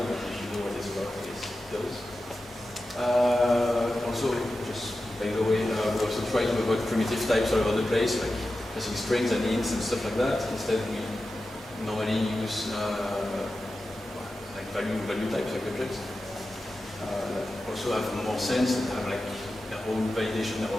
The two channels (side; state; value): both; normal; correlation 0.93